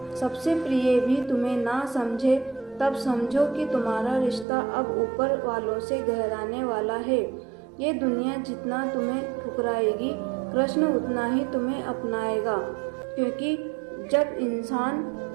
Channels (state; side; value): drops out; left; at 4.5 s